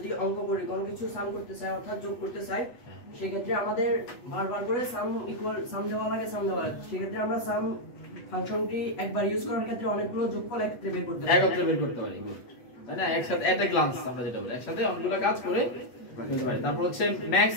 অঙ্ক করি কোনো কিছু সাম করতে চাই অর্থাৎ যোগ করতে চাই সেই ক্ষেত্রে আমাদের বারবার করে সাম ইকুয়াল সাম দেওয়া লাগে সেই ক্ষেত্রে আমরা সাম ফাংশনটি একবার ইউজ করার ক্ষেত্রে অনেকগুলো যোগফল একত্রে বের করতে পারি গুড তাই না একসাথে এট এ গ্লান্স আমরা যেটা বলি একসাথে অনেকগুলো কাজ করে ফেলতে পারি তারপর হচ্ছে ম্যাক্স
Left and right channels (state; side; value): late; right; 8.2 ms